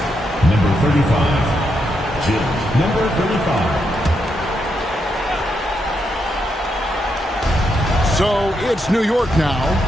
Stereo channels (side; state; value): both; normal; correlation 0.81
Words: Number 35. Jim. Number 35. So it's New York now.